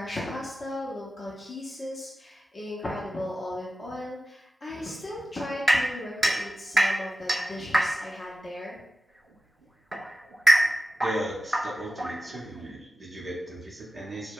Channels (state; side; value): normal; both; correlation 0.94